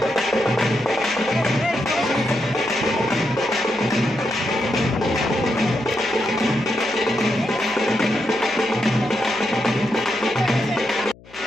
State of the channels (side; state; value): left; noise; hum, 24 dB below the sound